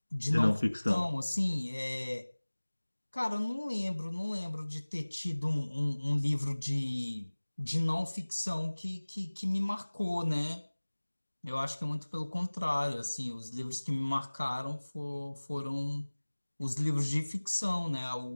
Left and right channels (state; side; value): inverted; both; correlation -1.00